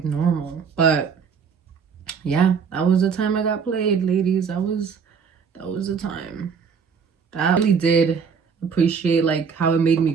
normal? But yeah, that was the time I got played, ladies. That was the time. That really did appreciate like how it made me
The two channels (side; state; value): left; quieter; 6.2 dB